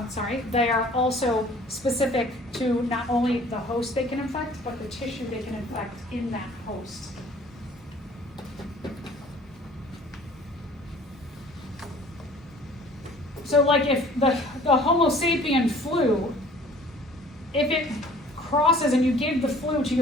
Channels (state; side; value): normal; both; correlation 0.51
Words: they are also specific to not only the host they can infect, but the tissue they can infect in that host. So like if the Homo sapien flu, if it crosses and you give the flu to